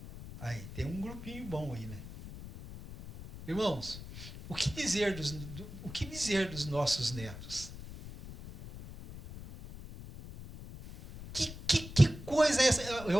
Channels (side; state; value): left; noise; rumble, 13 dB below the sound